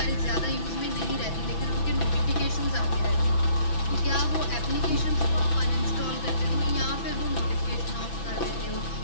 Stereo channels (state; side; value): late; right; 6.0 ms